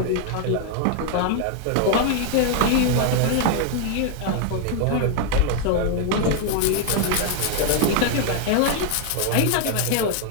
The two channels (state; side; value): different; both; correlation 0.00